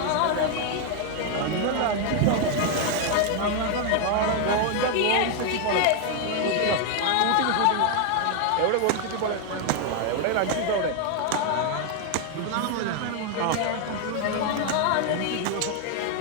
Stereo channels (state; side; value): different; both; correlation 0.01